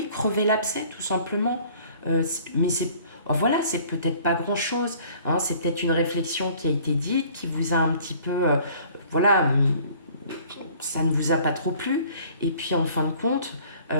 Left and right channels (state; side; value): inverted; both; correlation -0.53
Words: crever l'abcès, tout simplement. Mais voilà, c'est peut-être pas grand-chose, hein, c'est peut-être une réflexion qui a été dite, qui vous a un petit peu, voilà, ça ne vous a pas trop plu, et puis en fin de compte,